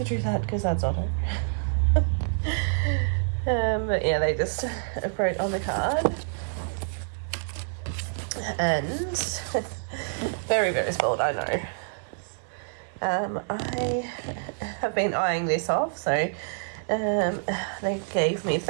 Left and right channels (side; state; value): left; silent; digital silence